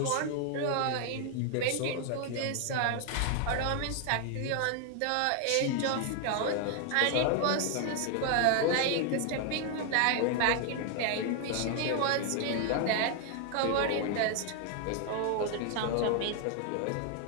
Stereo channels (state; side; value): different; both; correlation 0.00